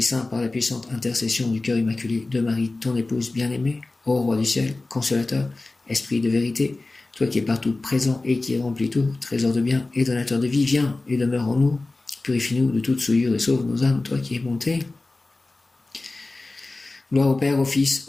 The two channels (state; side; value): quieter; right; 3.2 dB